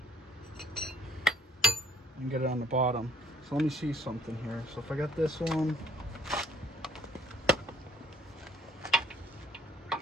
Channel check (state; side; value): normal; both; correlation 0.63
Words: and get it on the bottom. So let me see something here. So if I got this one,